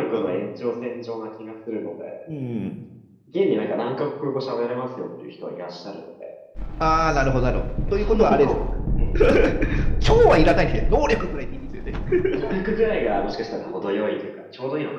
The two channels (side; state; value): both; identical; correlation 1.00